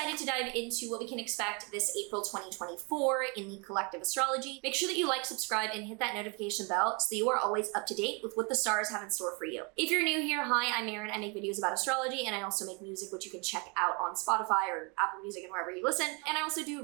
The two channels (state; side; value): quieter; left; 31.8 dB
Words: to dive into what we can expect this April 2024 in the collective astrology, make sure that you like, subscribe, and hit that notification bell so that you are always up to date with what the stars have in store for you. If you're new here, hi, I'm Maren. I make videos about astrology, and I also make music, which you can check out on Spotify or Apple Music and wherever you listen. And I also do